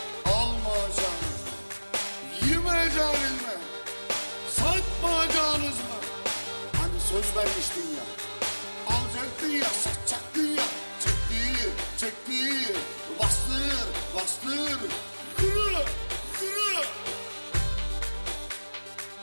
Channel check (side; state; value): both; inverted; correlation -1.00